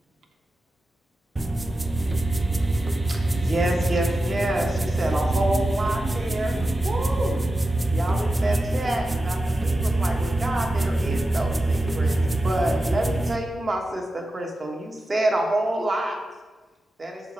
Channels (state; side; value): normal; both; correlation 0.92